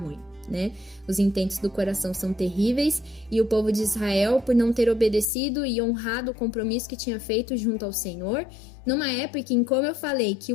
né? Os intentos do coração são terríveis e o povo de Israel, por não ter obedecido e honrado o compromisso que tinha feito junto ao Senhor, numa época em, como eu falei, que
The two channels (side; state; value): right; drops out; at 5.3 s